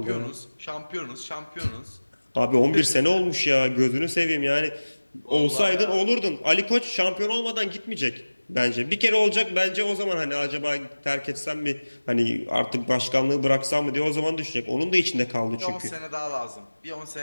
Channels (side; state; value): both; inverted; correlation -1.00